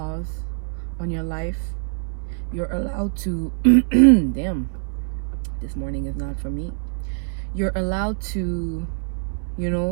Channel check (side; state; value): left; silent; 63 dB below the other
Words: on your life. You're allowed to damn, this morning is not for me. You're allowed to, you